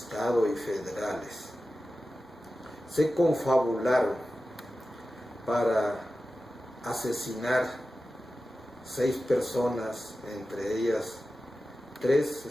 y federales se confabularon para asesinar 6 personas, entre ellas 3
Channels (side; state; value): both; normal; correlation 0.94